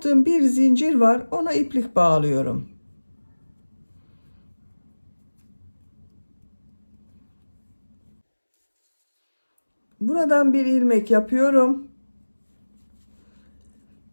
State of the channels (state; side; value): inverted; both; correlation -1.00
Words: bir zincir var. Ona iplik bağlıyorum. Buradan bir ilmek yapıyorum.